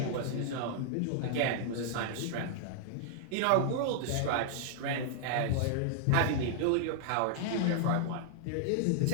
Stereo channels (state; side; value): different; both; correlation -0.01